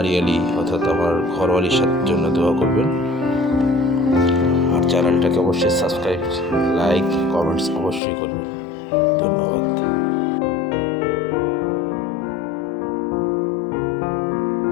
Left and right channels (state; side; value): drops out; right; at 8.0 s